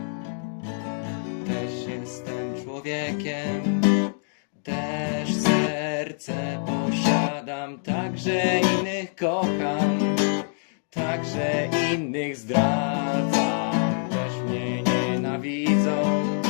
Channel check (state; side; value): silent; right; digital silence